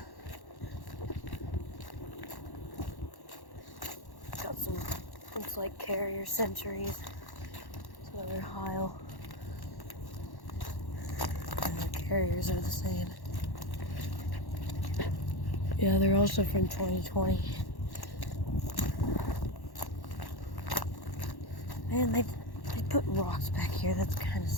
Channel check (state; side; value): late; right; 1.1 ms